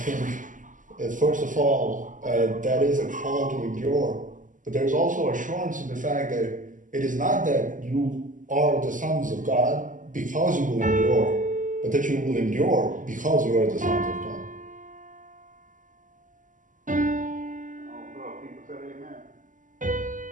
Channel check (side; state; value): left; late; 0.38 ms